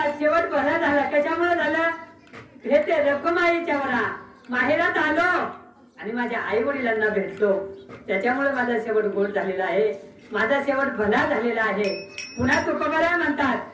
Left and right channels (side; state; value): both; identical; correlation 1.00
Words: शेवट भला झाला. कशामुळे झालं? हे ते रखुमाईच्या माहेरात आलो आणि माझ्या आई वडिलांना भेटलो, त्याच्यामुळे माझा शेवट गोड झालेला आहे, माझा शेवट भला झालेला आहे. पुन्हा तुकोबराय म्हणतात